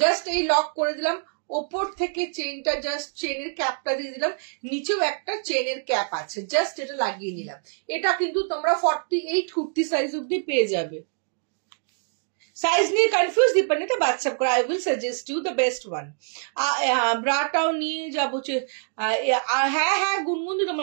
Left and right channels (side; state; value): left; silent; 62 dB below the other